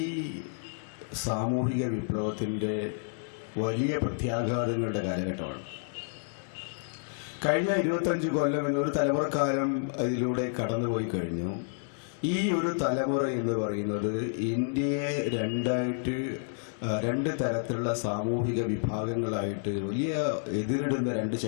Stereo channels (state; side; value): silent; right; 58 dB below the other